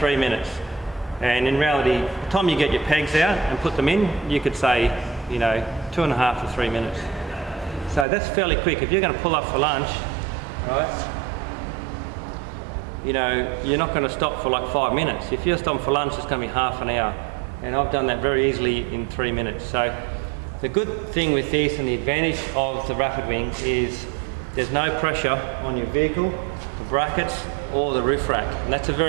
minutes. And in reality, by the time you get your pegs out and put them in, you could say, you know, 2.5 to 3 minutes. So that's fairly quick. If you're going to pull up for lunch, right, you know, you're not going to stop for like 5 minutes. If you're stopping for lunch, it's going to be half an hour. And I've done that very easily in 3 minutes. So the good thing with this and the advantage of the rapid wing is there's no pressure on your vehicle, the brackets, or the roof rack. And that's a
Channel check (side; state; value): left; drops out; at 8.1 s